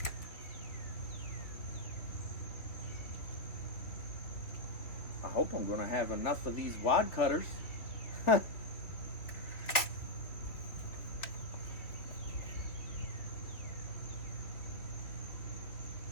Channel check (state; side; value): late; right; 3.1 ms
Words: I hope I'm gonna have enough of these wad cutters.